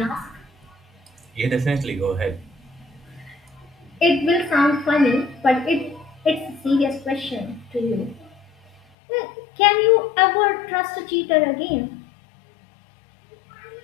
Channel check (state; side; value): drops out; right; at 8.8 s